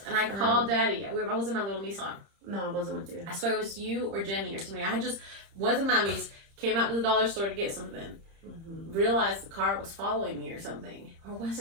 And I called Daddy. I was in my little Nissan. No, I wasn't with you. I swear it was you or Jenny or somebody. I just wasn't mommy's. Came out to the dollar store to get something. Mm-hmm. Realized the car was following me or something. Or was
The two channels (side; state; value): left; late; 30 ms